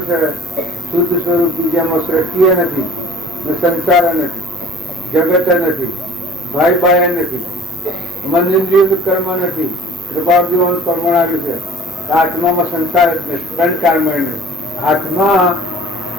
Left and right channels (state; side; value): normal; both; correlation 0.47